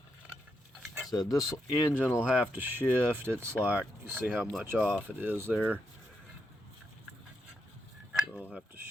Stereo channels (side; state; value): both; normal; correlation 0.82